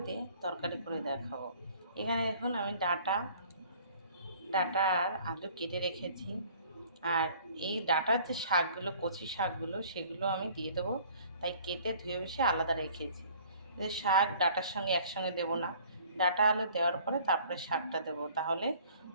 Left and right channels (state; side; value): inverted; both; correlation -0.53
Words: দিয়ে তরকারি করে দেখাবো। এখানে দেখুন আমি ডাটা আর আলু কেটে রেখেছি। আর এই ডাটার যে শাকগুলো, কচি শাকগুলো, সেগুলো আমি দিয়ে দেবো, তাই কেটে ধুয়ে বসে আলাদা রেখেছি। যে শাক ডাটার সঙ্গে একসঙ্গে দেবো না, ডাটা আলু দেওয়ার পরে তারপরে শাকটা দেবো, তাহলে